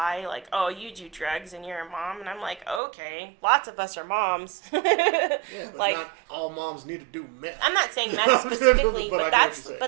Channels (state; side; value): drops out; left; at 2.8 s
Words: Like, oh, you do drugs and you're a mom. And I'm like, okay, lots of us are moms. Yeah, but like, not all moms need to do meth. I'm not saying meth specifically, but